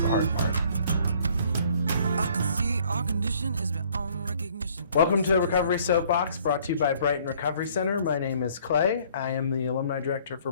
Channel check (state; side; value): inverted; both; correlation -0.59